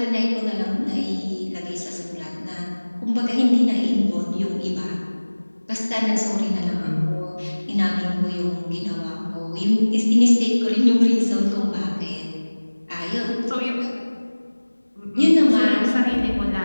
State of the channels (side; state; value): both; inverted; correlation -1.00